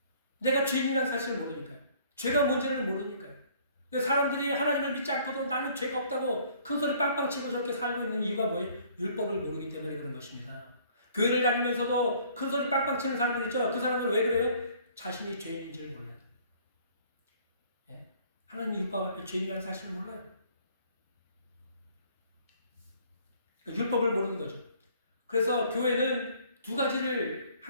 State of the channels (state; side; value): inverted; both; correlation -0.58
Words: 내가 죄인이라는 사실을 모르니까요. 죄가 뭔지를 모르니까요. 사람들이 하나님을 믿지 않고도 나는 죄가 없다고 큰소리 빵빵 치고 저렇게 살고 있는 이유가 뭐예요? 율법을 모르기 때문에 그런 것입니다. 교회를 다니면서도 큰소리 빵빵 치는 사람들 있죠? 그 사람들 왜 그래요? 자신이 죄인인지를 몰라요. 예? 하나님 율법 앞에 죄인이라는 사실을 몰라요. 그러니까 율법을 모르는 거죠. 그래서 교회는 두 가지를